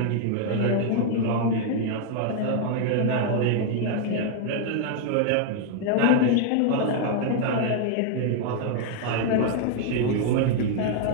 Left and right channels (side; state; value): both; different; correlation 0.00